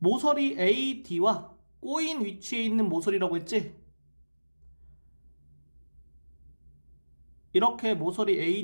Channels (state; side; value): inverted; both; correlation -1.00